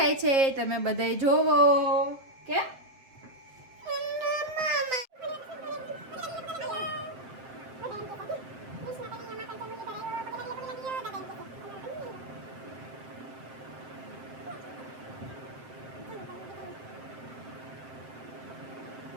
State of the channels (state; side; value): late; left; 7.6 ms